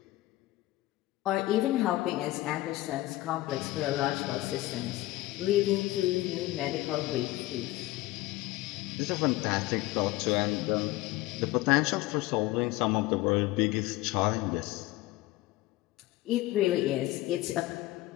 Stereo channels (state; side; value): quieter; right; 18.0 dB